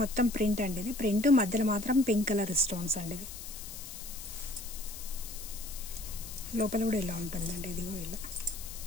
మొత్తం ప్రింట్ అండి. ఇది ప్రింట్ మధ్యలో మాత్రం పింక్ కలర్ స్టోన్స్ అండి. ఇది లోపల కూడా ఇలా ఉంటుందండి. ఇది కూడా ఇలా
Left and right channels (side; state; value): left; noise; hiss, 11 dB below the sound